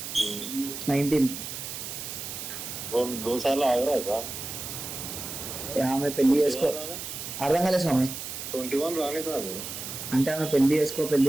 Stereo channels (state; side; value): noise; right; hiss, 7 dB below the sound